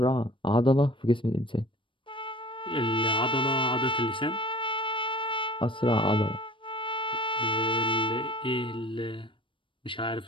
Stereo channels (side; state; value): right; late; 0.25 ms